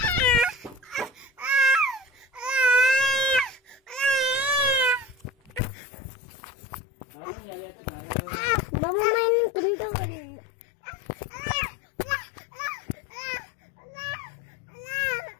Mama main kentang.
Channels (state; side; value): drops out; right; at 5.6 s